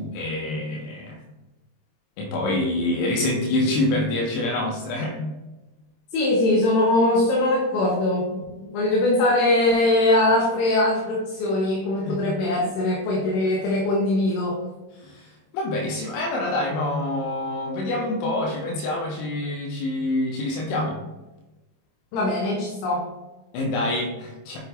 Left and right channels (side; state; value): right; late; 26 ms